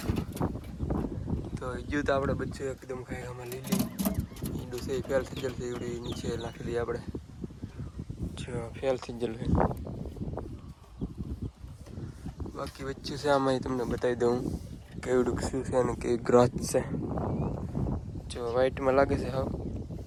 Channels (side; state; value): both; identical; correlation 1.00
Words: તો હજુ તો આપણે બચ્ચું એકદમ ખાઈમાં લીલી ઈંડું છે ફેલ થઈ ગયેલું છે એવડી નીચે નાખી દઈએ આપણે જો ફેલ થઈ ગયેલું છે બાકી બચ્ચું છે આમાં તમને બતાવી દઉં કેવડું શું છે અને કેવી ગ્રોથ છે જો વ્હાઈટમાં લાગે છે હા